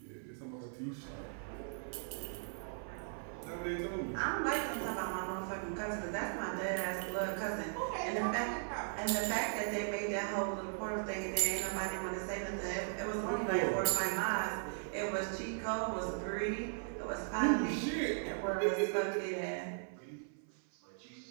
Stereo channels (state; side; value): silent; left; 52 dB below the other